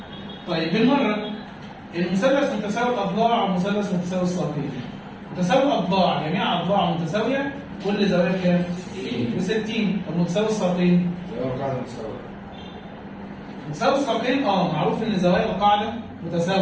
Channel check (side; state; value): both; identical; correlation 1.00